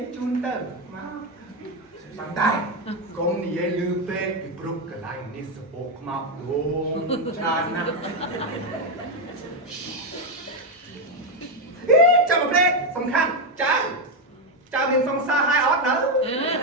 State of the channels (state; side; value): normal; both; correlation 0.06